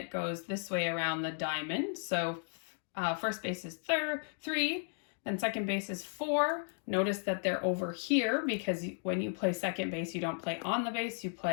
goes this way around the diamond. So first base is 3, then second base is 4. Notice that they're over here because when you play second base, you don't play on the base, you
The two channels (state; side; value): silent; right; 55 dB below the other